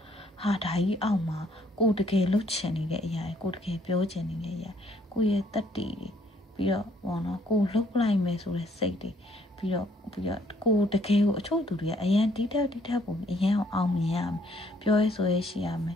ဟာဒါကြီးအောက်မှာကိုတကယ်လှုပ်ချင်နေတဲ့အရာကိုတကယ်ပြောချင်နေတဲ့အရာကိုရဲ့တတ်တည်တွေပြီးတော့ပေါ့နော်ကိုလှုပ်လိုက်မယ်ဆိုတဲ့စိတ်တွေပြီးတော့ကိုတကယ်ကိုအချို့သူတွေကအရန်တီးတက်ပုံအရန်အောင်မြင်ရမယ်ပြောရဲဆိုရဲရှိရမယ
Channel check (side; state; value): both; normal; correlation 0.65